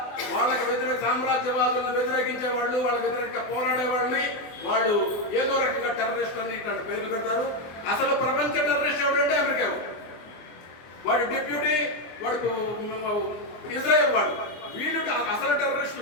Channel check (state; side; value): late; right; 24 ms